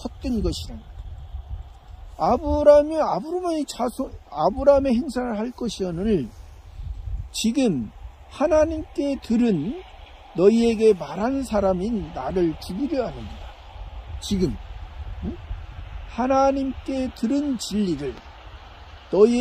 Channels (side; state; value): both; identical; correlation 1.00